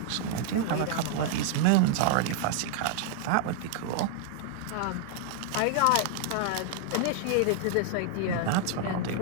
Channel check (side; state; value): both; different; correlation 0.00